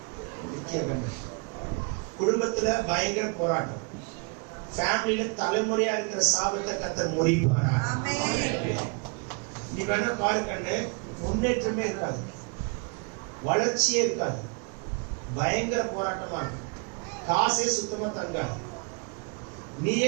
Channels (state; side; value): quieter; left; 34.2 dB